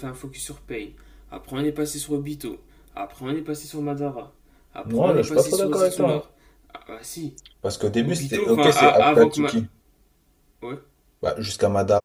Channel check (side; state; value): both; identical; correlation 1.00